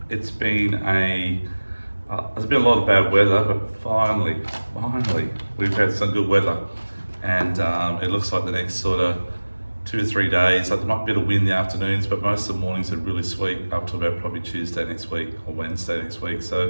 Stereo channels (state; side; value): inverted; both; correlation -1.00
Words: It's been there's been a lot of bad weather, but finally, we've had some good weather, and it looks like the next sort of 2 to 3 days. There might be a bit of wind in the afternoons, but most of the mornings are really sweet up to about probably Tuesday next week or Wednesday next week. So